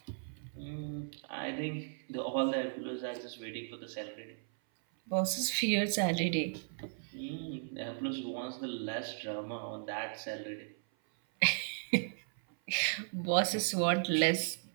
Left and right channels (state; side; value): silent; left; 54 dB below the other